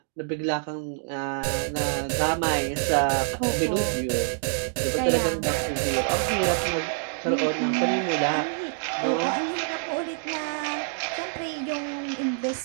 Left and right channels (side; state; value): left; silent; digital silence